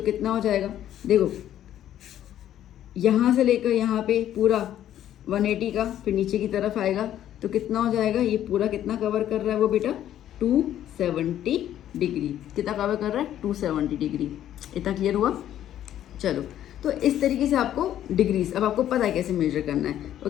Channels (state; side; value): quieter; right; 11.5 dB